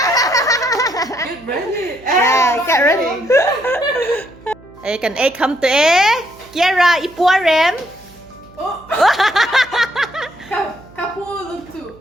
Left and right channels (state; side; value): noise; right; hum, 24 dB below the sound